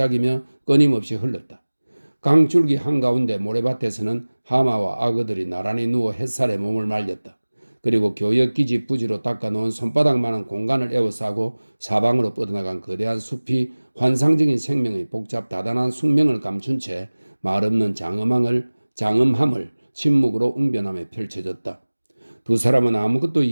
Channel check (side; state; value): both; inverted; correlation -1.00